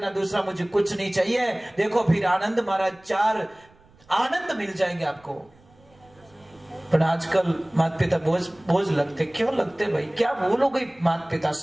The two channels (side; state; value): right; noise; rumble, 29 dB below the sound